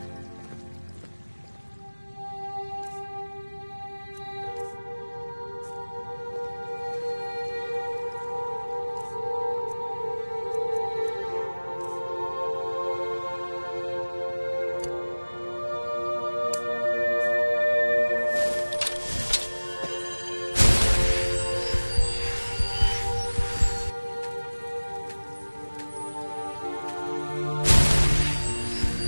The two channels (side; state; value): both; inverted; correlation -1.00